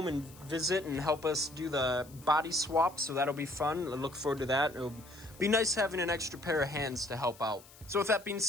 and visit and help us do the body swap, so that'll be fun. I look forward to that. It'll be nice having an extra pair of hands to help out. So with that being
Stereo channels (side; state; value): left; noise; hiss, 22 dB below the sound